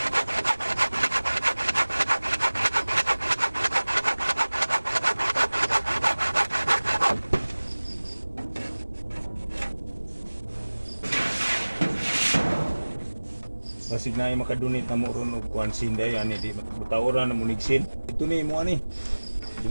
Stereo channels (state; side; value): inverted; both; correlation -1.00